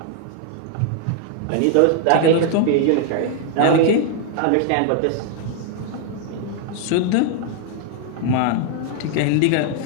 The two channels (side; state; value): both; different; correlation 0.00